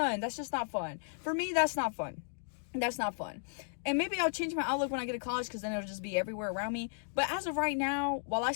That's just not fun. For me, that's not fun. That's not fun. And maybe I'll change my outlook when I get to college, because then it'll just be everywhere around me. But as of right now, while I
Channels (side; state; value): right; silent; digital silence